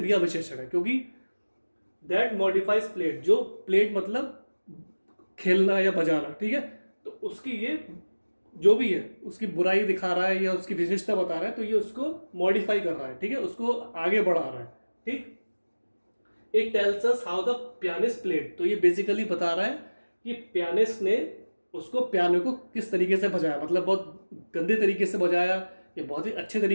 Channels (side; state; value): both; inverted; correlation -1.00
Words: विशेषण है, क्योंकि दैट मॉडिफाइज प्लेड, जो प्लेड मतलब खेलना या बजाना. ठीक है, तो उसकी ये जो भी है उसकी बुराई दिखा रहा है या उसकी विशेषता बता रहा है, तो ये उसको मॉडिफाई कर रहा है. ठीक है, उसको आगे बढ़ा रहा है. ठीक, it tells us how the pianist played. तो ये बेसिकली बता रहा है कि पियानिस्ट ने उसको पियानो को किस तरीके से बजाया, मतलब बहुत गंदे तरीके से बजाया या बहुत ही अच्छे